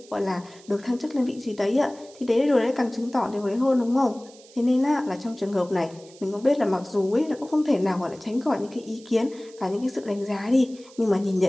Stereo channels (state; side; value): noise; right; hiss, 24 dB below the sound